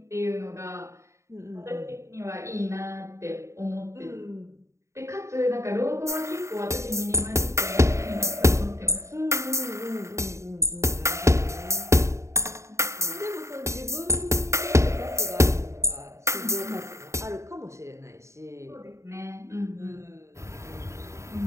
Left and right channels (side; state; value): left; late; 0.14 ms